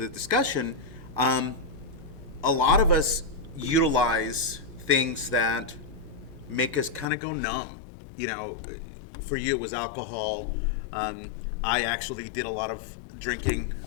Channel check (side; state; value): right; drops out; at 7.1 s